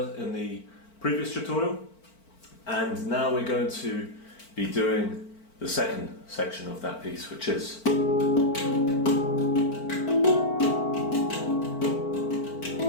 the previous tutorial, and now we're going to be doing the second section of that piece, which is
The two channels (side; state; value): right; late; 4.5 ms